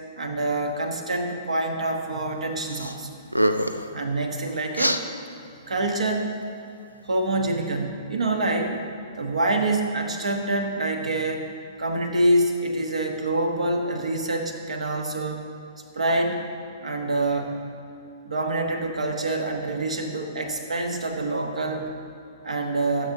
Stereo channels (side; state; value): both; inverted; correlation -0.64